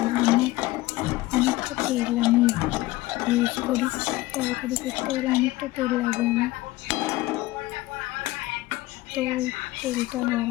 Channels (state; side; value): quieter; right; 18.4 dB